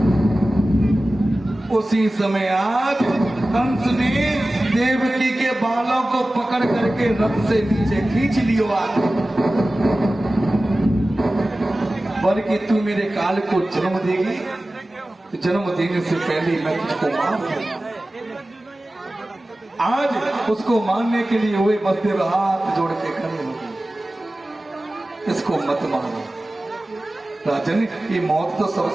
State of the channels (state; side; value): normal; both; correlation 0.96